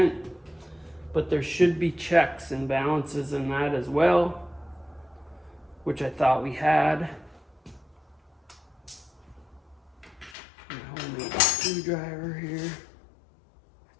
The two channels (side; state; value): right; drops out; at 10.4 s